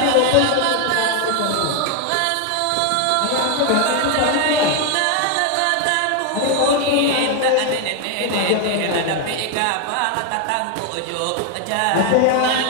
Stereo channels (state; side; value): different; both; correlation 0.01